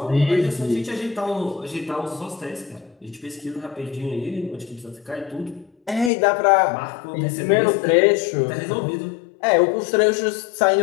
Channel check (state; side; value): drops out; right; at 6.1 s